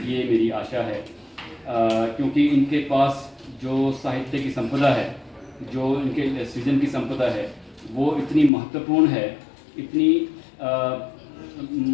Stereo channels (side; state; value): right; drops out; at 8.5 s